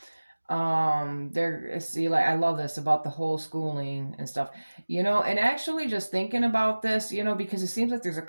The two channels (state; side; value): inverted; both; correlation -1.00